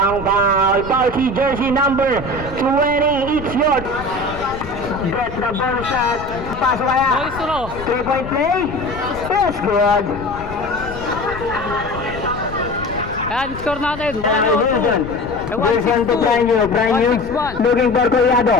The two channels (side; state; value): left; noise; rumble, 12 dB below the sound